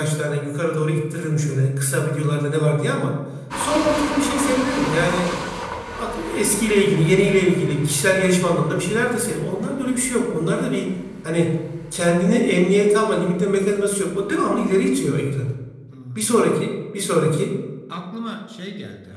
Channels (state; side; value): identical; both; correlation 1.00